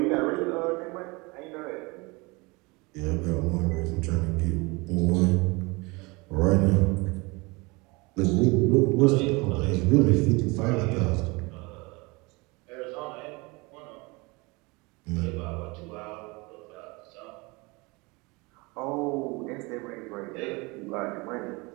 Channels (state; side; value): quieter; left; 25.9 dB